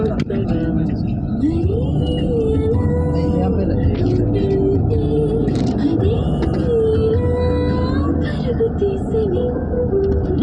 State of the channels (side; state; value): both; identical; correlation 1.00